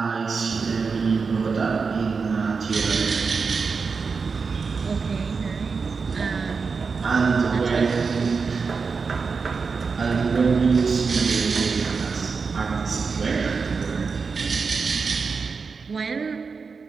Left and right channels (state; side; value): quieter; left; 5.0 dB